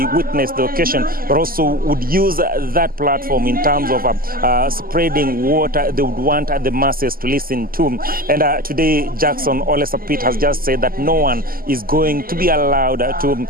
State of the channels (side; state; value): left; late; 0.42 ms